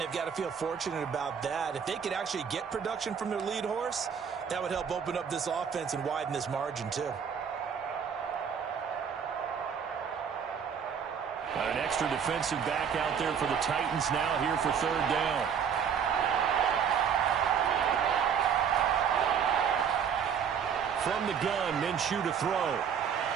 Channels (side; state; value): left; quieter; 7.4 dB